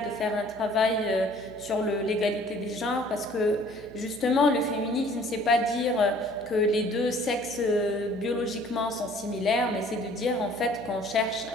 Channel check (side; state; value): right; noise; hum, 20 dB below the sound